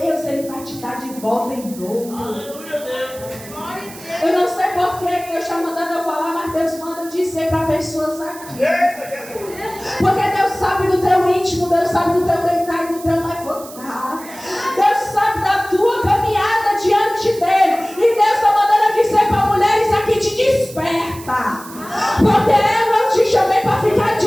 Ele vai te dar de volta em dobro. Eu não sei porquê que Deus está mandando eu falar, mas Deus manda dizer para pessoas aqui. Porque Deus sabe do teu íntimo, Deus sabe do teu deitar e do teu levantar. Deus sabe da tua caminhada diante dEle. E Deus está mandando dizer para mulheres aqui, te desperta. Porque eu não te chamei para ficar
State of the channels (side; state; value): right; noise; hiss, 17 dB below the sound